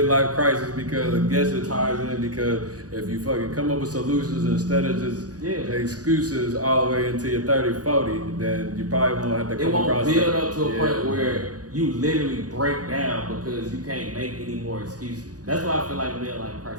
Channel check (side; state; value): left; late; 0.68 ms